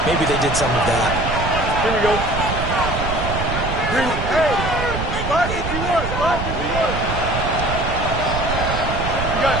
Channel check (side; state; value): right; noise; rumble, 4 dB below the sound